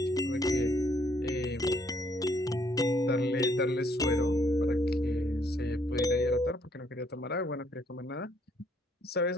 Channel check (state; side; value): normal; both; correlation 0.68